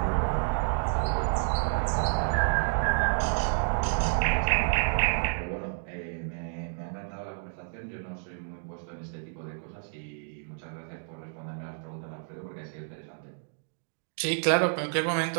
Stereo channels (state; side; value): silent; left; digital silence